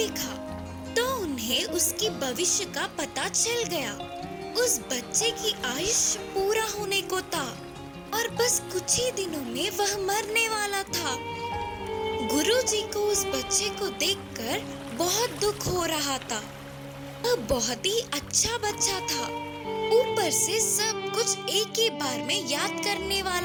तो उन्हें उसकी भविष्य का पता चल गया। उस बच्चे की आयुष्य पूरा होने को था और बस कुछ ही दिनों में वह मरने वाला था। गुरुजी को उस बच्चे को देखकर बहुत दुख हो रहा था। वह बहुत ही अच्छा बच्चा था। ऊपर से सब कुछ एक ही बार में याद करने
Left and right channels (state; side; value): identical; both; correlation 1.00